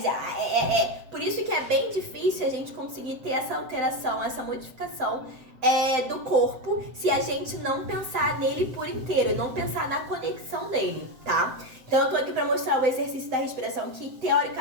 Por isso que é bem difícil a gente conseguir ter essa alteração, essa modificação do corpo se a gente não pensar nele por inteiro e não pensar na conexão dele, tá? Então eu tô aqui pra mostrar o exercício da respiração, que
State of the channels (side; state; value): left; late; 7.8 ms